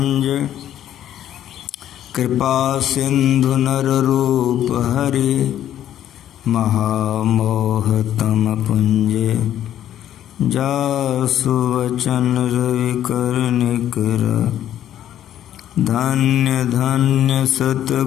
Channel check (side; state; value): right; quieter; 11.3 dB